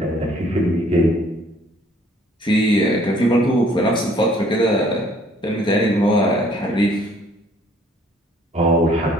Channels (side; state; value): both; normal; correlation 0.60